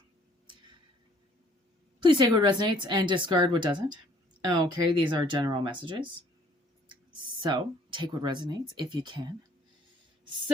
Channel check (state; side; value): normal; both; correlation 0.59